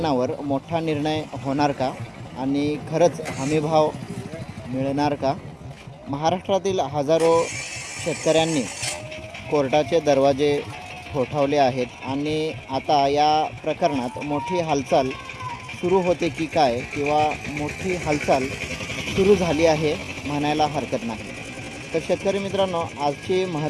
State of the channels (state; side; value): identical; both; correlation 1.00